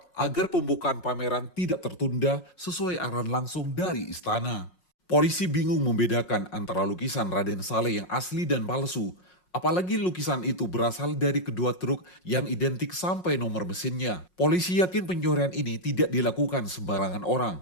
agar pembukaan pameran tidak tertunda sesuai arahan langsung dari istana. Polisi bingung membedakan antara lukisan Raden Saleh yang asli dan palsu. Apalagi lukisan itu berasal dari kedua truk yang identik sampai nomor mesinnya. Polisi yakin pencurian ini tidak dilakukan sembarangan orang,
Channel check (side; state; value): right; late; 5.5 ms